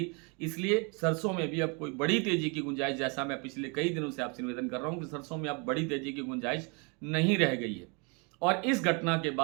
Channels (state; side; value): quieter; left; 32.8 dB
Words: इसलिए सरसों में भी अब कोई बड़ी तेज़ी की गुंजाइश, जैसा मैं पिछले कई दिनों से आपसे निवेदन कर रहा हूँ कि सरसों में अब बड़ी तेज़ी की गुंजाइश नहीं रह गई है और इस घटना के